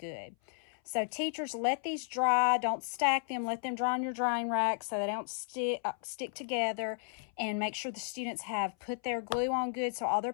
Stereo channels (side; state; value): right; silent; 55 dB below the other